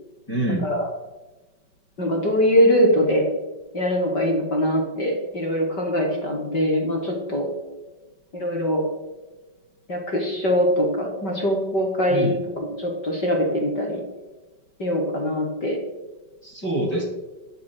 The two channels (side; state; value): right; late; 5.2 ms